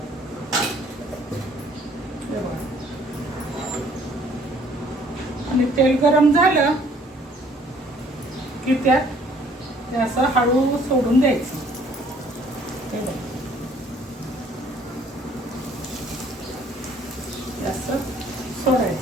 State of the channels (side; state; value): both; normal; correlation 0.59